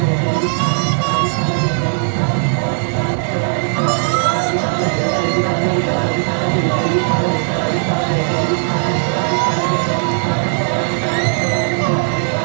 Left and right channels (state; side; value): silent; left; 65 dB below the other